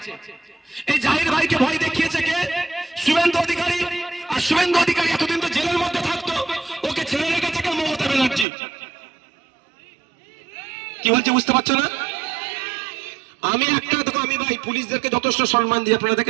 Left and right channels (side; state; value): left; drops out; at 8.5 s